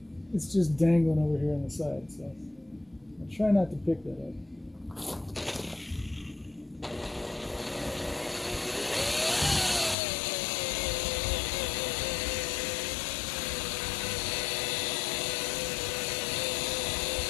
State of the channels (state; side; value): drops out; right; at 10.0 s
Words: It's just dangling over here on the side, so I'll try not to pick that up.